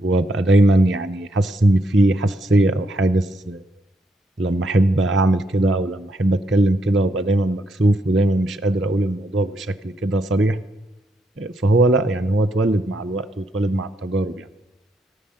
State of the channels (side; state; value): both; normal; correlation 0.77